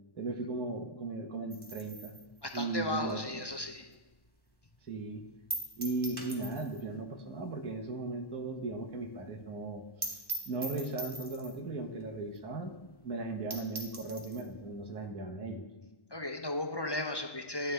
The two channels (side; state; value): right; late; 1.1 ms